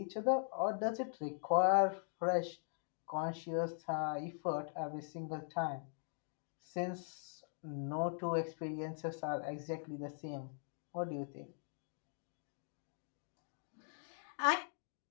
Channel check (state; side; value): silent; right; digital silence